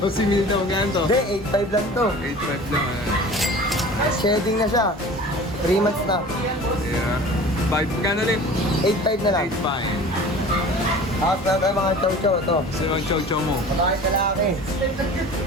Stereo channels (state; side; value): normal; both; correlation 0.41